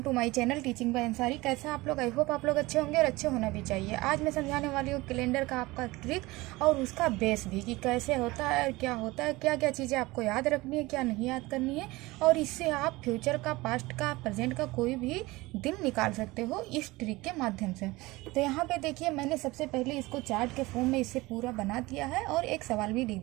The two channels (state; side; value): quieter; left; 21.0 dB